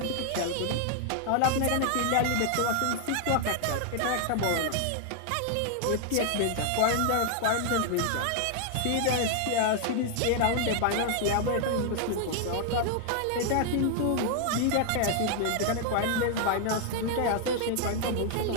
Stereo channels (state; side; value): different; both; correlation 0.00